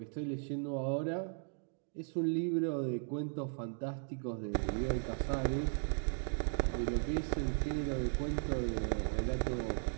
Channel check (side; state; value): left; silent; 53 dB below the other